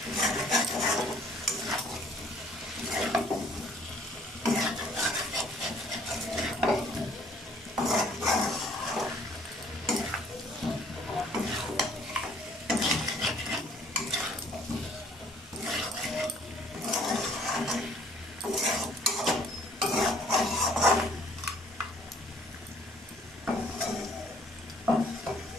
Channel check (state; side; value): normal; both; correlation 0.59